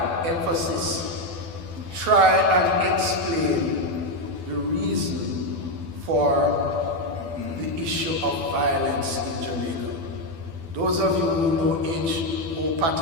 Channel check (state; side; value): late; left; 12 ms